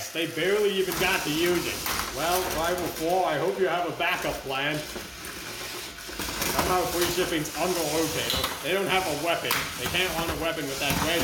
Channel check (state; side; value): identical; both; correlation 1.00